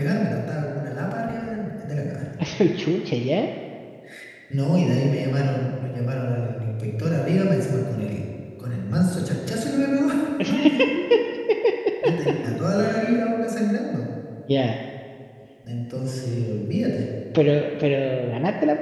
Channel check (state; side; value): identical; both; correlation 1.00